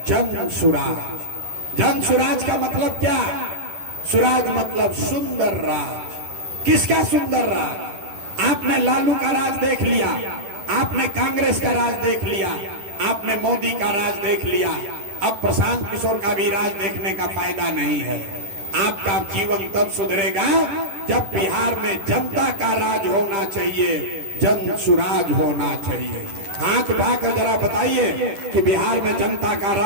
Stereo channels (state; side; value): late; left; 11 ms